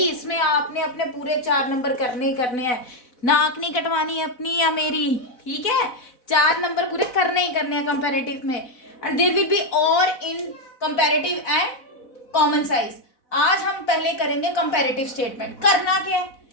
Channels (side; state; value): right; late; 4.0 ms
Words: इसमें आपने अपने पूरे 4 नंबर करने ही करने हैं. नाक नहीं कटवानी अपनी या मेरी. ठीक है, 4 नंबर पूरे करने ही करने हैं कंपैरेटिव में. एंड देयर विल बी और इन कंपैरेटिव एंड कॉमन साइज. आज हम पहले करेंगे कंपैरेटिव स्टेटमेंट. करना क्या है,